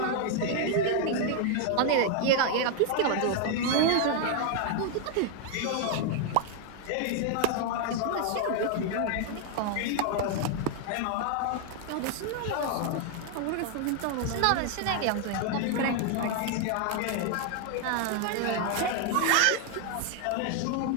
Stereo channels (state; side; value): different; both; correlation 0.00